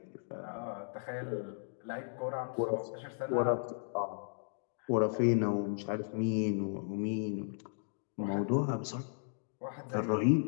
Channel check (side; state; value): right; silent; digital silence